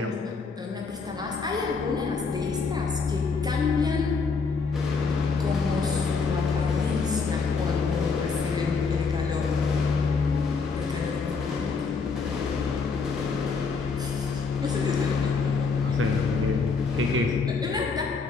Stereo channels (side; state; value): right; quieter; 4.8 dB